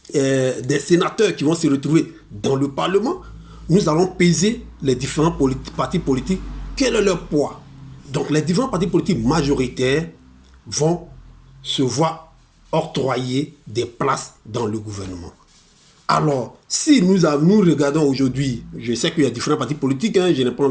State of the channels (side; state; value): both; identical; correlation 1.00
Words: des sénateurs qui vont se retrouver dans le Parlement, nous allons peser les différents partis politiques. Quel est leur poids? Donc les différents partis politiques majoritaires vont se voir octroyer des places dans le gouvernement. Alors, si nous regardons aujourd'hui, je sais qu'il y a différents partis politiques, je n'ai pas